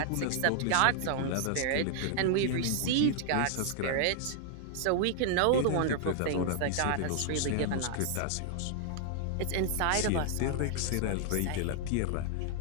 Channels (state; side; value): different; both; correlation 0.00